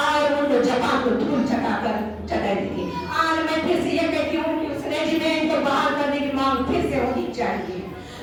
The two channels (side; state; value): both; identical; correlation 1.00